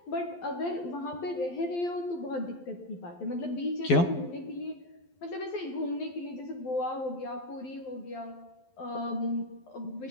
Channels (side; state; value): right; late; 12 ms